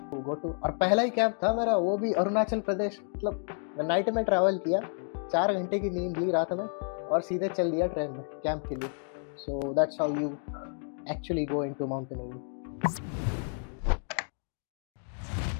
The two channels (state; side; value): silent; right; 55 dB below the other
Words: गो टू, और पहला ही कैंप था मेरा, वो भी अरुणाचल प्रदेश। मतलब नाइट में ट्रैवल किया, 4 घंटे की नींद ली रात में और सीधे चल दिया ट्रेन में कैंप के लिए। सो that's how you actually go into mountaineering.